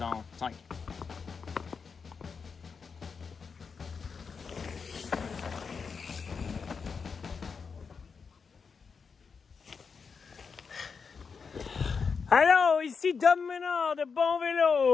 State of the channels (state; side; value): quieter; right; 5.5 dB